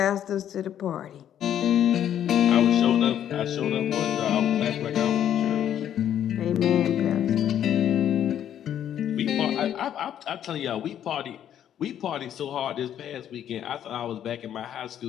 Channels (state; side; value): quieter; right; 10.2 dB